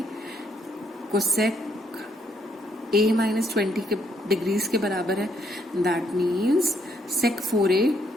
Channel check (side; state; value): both; normal; correlation 0.72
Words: कोसेक a माइनस 20 के डिग्रीज के बराबर है, दैट मीन्स सेक 4a